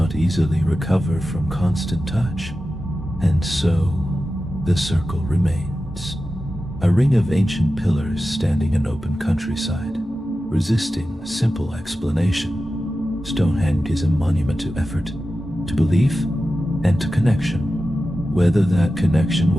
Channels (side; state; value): both; normal; correlation 0.93